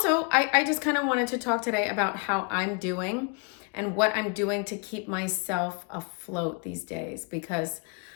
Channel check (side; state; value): right; quieter; 35.0 dB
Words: I just kind of wanted to talk today about how I'm doing and what I'm doing to keep myself afloat these days because